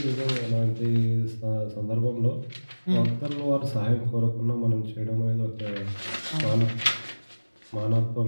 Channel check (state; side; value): inverted; both; correlation -1.00